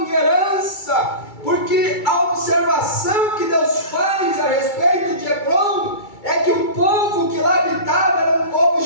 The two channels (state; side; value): late; right; 2.3 ms